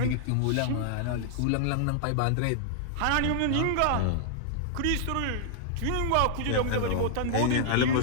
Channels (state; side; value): different; both; correlation -0.01